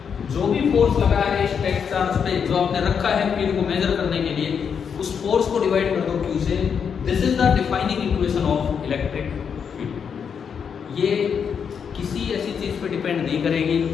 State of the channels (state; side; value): quieter; right; 6.9 dB